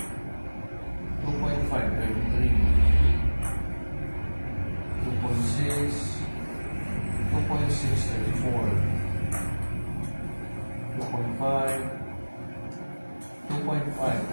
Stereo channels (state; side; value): inverted; both; correlation -1.00